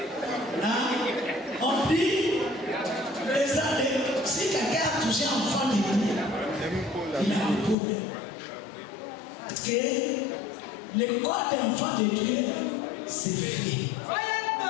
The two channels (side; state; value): right; drops out; at 7.8 s